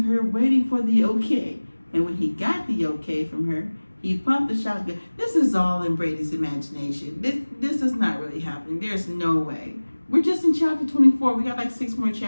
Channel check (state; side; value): inverted; both; correlation -1.00